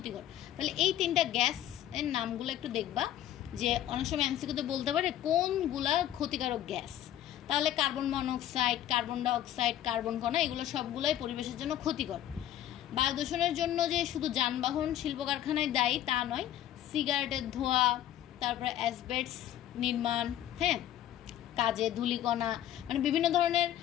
তাহলে এই তিনটা গ্যাস এর নামগুলো একটু দেখবা, যে অনেক সময় এমসিকিউতে বলতে পারে কোনগুলা ক্ষতিকারক গ্যাস। তাহলে carbon monoxide, carbon dioxide, carbon কণা, এগুলো সবগুলোই পরিবেশের জন্য ক্ষতিকর। বায়ু দূষণের জন্য যে শুধু যানবাহন, শিল্প কারখানায় দায়ী তা নয়, সিগারেটের ধোঁয়া, তারপরে অ্যাসবেস্টস নির্মাণ, হ্যাঁ, কাজে ধূলিকণা, মানে বিভিন্ন ধরনের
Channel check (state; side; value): quieter; right; 12.2 dB